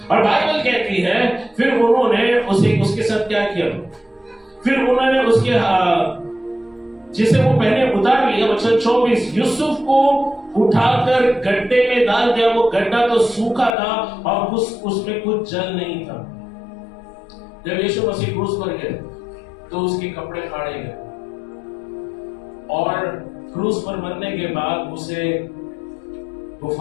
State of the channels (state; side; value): drops out; right; at 13.7 s